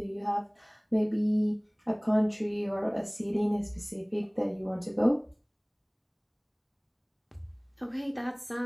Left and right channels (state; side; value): identical; both; correlation 1.00